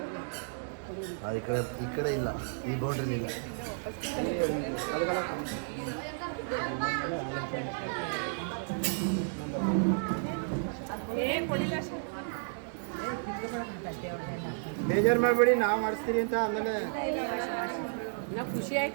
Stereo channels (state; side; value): silent; left; digital silence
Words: ಈ ಕಡೆ ಇಲ್ಲ, ಈ ಬೌಂಡ್ರಿ ಇಲ್ಲ. ಬೇಜಾರು ಮಾಡಬೇಡಿ, ನಾವು ಮಾಡಿಸ್ತೀರಿ ಅಂತ. ಆಮೇಲೆ ಖುಷಿ